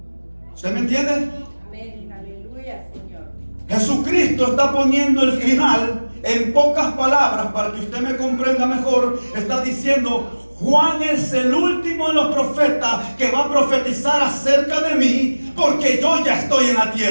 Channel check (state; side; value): inverted; both; correlation -1.00